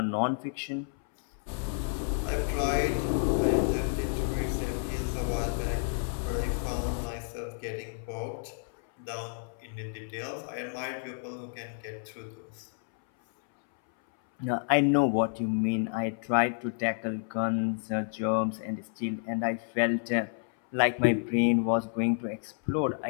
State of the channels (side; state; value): right; silent; 58 dB below the other